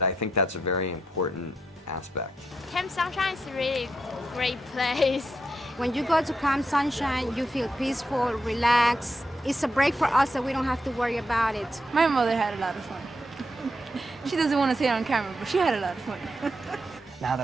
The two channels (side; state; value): both; normal; correlation 0.82